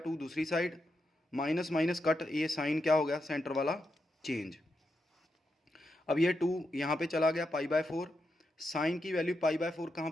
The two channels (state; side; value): normal; both; correlation 0.85